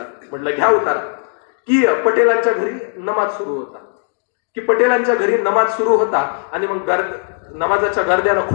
म्हटलं घ्या उतारा की पटेलांच्या घरी नमाज सुरू होता आणि मग नमाजाच्या गर्द्यानं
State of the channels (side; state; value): right; silent; 56 dB below the other